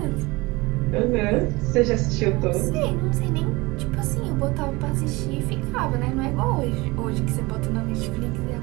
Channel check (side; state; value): left; quieter; 23.1 dB